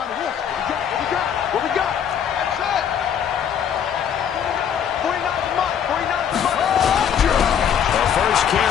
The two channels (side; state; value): right; quieter; 8.4 dB